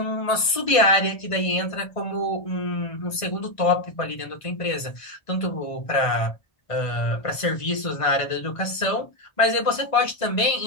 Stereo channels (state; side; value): late; right; 1.5 ms